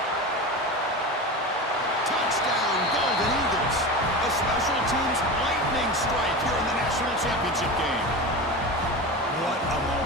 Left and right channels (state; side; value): normal; both; correlation 0.27